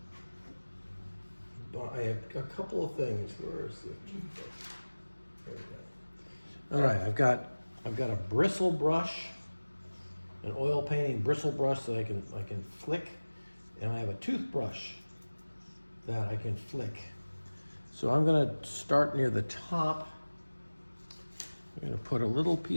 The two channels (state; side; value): inverted; both; correlation -1.00